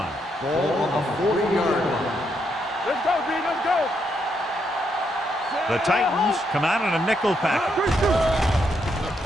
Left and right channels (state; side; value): normal; both; correlation 0.78